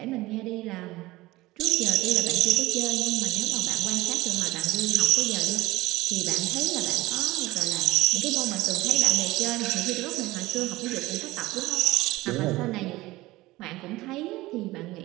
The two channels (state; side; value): quieter; left; 19.0 dB